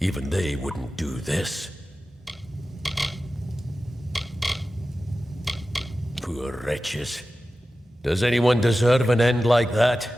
they wouldn't do this. Poor wretches. Does anyone deserve an end like that?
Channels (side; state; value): both; normal; correlation 0.94